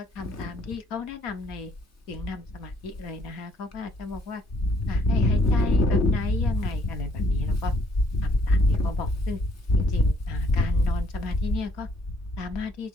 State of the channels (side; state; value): both; normal; correlation 0.65